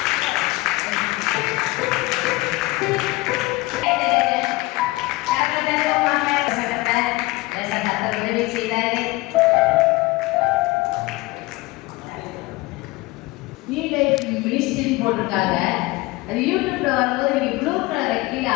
போட்டிருக்காங்க. அது யூடியூப்ல வரும்போது நீங்க ப்ளூ கலர் கீழே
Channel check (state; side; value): quieter; right; 21.6 dB